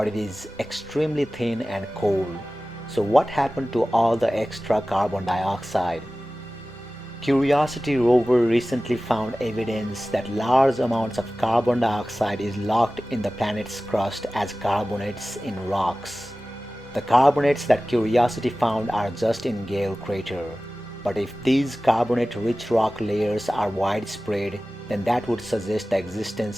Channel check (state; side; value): normal; both; correlation 0.96